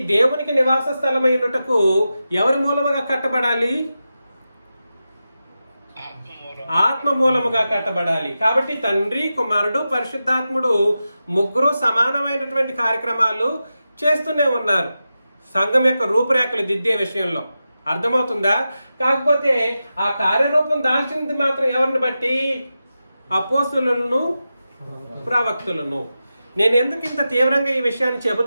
దేవునికి నివాస స్థలమై ఉండుటకు ఎవరి మూలముగా కట్టబడాలి? ఆత్మ మూలముగా కట్టబడాలి. కాబట్టి తండ్రి, కుమారుడు, పరిశుద్ధాత్ముడు ముగ్గురు సమానమైనటువంటి కార్యక్రమాలు చేస్తూనే ఉన్నారు సంఘం యొక్క రూపురేఖలు దిద్దే విషయంలో. అర్థమవుతుందా? కాకపోతే ఆ కార్యరూపం దాల్చింది మాత్రం ఎవరిని బట్టి? అపోస్తులను, ప్రవక్తులను. నేను ఎందుకు ఇంత తీవ్రంగా ఈ విషయాన్ని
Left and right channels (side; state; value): both; inverted; correlation -0.91